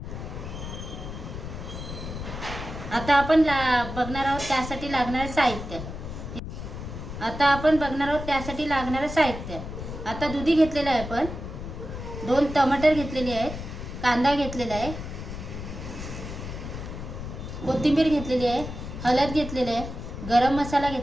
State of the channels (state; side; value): noise; left; rumble, 8 dB below the sound